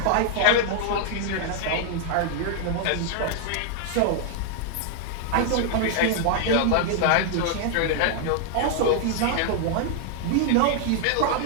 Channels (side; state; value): both; different; correlation 0.00